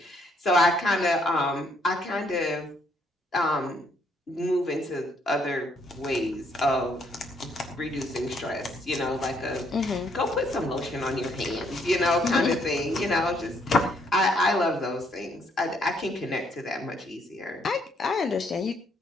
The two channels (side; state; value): both; normal; correlation 0.69